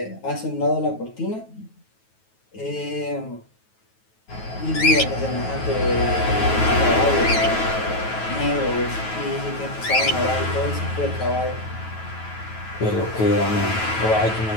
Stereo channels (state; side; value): late; right; 9.2 ms